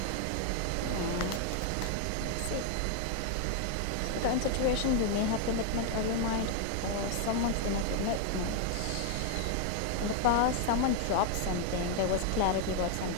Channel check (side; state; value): both; different; correlation 0.00